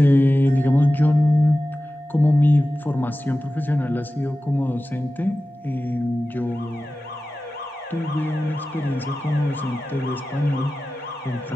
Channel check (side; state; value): both; normal; correlation 0.95